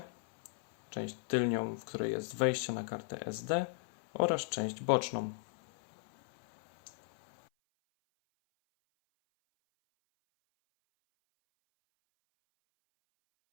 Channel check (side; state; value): right; silent; 53 dB below the other